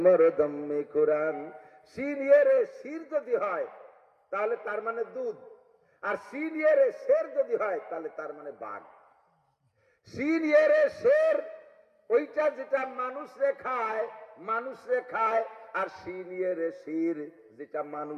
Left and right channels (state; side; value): identical; both; correlation 1.00